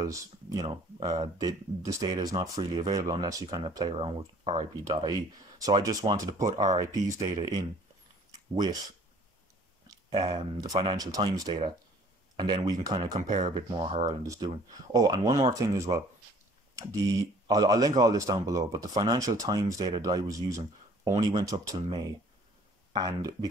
this data is not freely available unless you kind of play around with RIP.ie. So I just wanted to put RIP's data in with the Financial Times data, and then we can kind of compare a bit more how Ireland is doing. Oh, and one more thing as well. I'll link all this down below, but the Financial Times data that I was using only went up till May. And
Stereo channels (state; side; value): normal; both; correlation 0.54